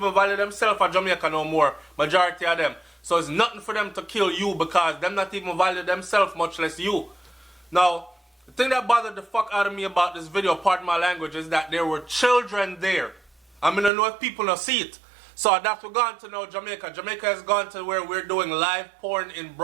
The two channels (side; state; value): left; drops out; at 13.9 s